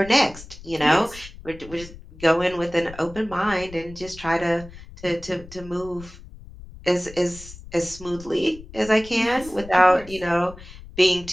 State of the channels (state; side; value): noise; left; rumble, 17 dB below the sound